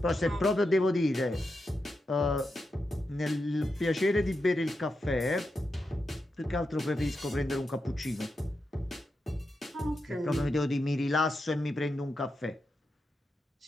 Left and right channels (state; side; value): normal; both; correlation 0.87